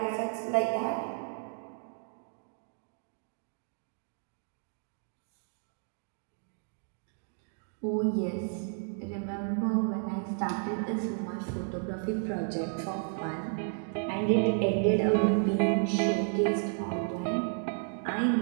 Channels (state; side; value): silent; left; 56 dB below the other